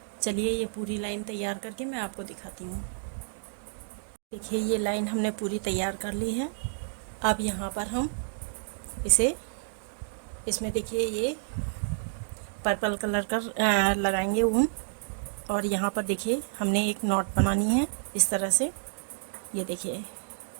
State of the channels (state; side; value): silent; left; digital silence